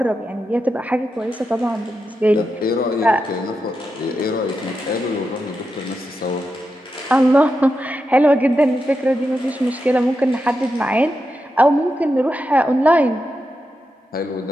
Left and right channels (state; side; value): normal; both; correlation 0.88